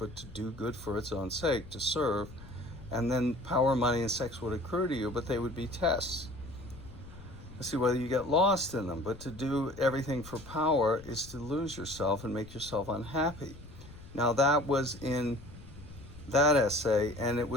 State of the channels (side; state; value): left; noise; rumble, 17 dB below the sound